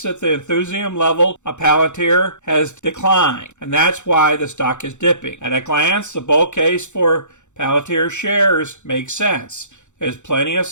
that the enthusiasm level of Palantir has declined, and that's why the stock is dipping. At a glance, the bull case for Palantir shares makes sense. There's plenty of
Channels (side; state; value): right; late; 0.84 ms